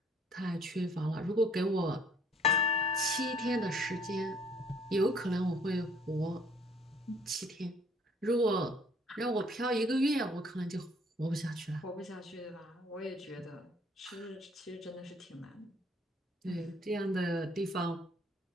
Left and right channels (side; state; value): both; normal; correlation 0.60